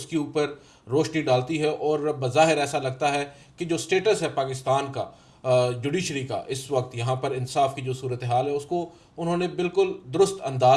کے اوپر روشنی ڈالتی ہے، اور بظاہر ایسا لگتا ہے کہ جو سٹیٹس ہے پاکستان کا جوڈیشری کا اس وقت یہاں پر انصاف کی جو صورتحال ہے اس کو انہوں نے بالکل درست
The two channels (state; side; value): identical; both; correlation 1.00